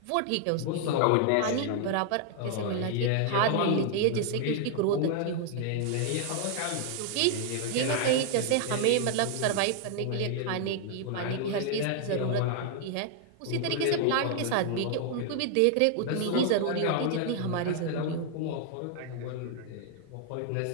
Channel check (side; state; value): both; different; correlation 0.00